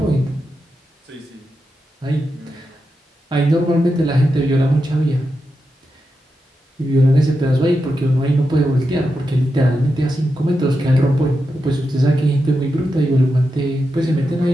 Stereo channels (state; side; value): normal; both; correlation 0.88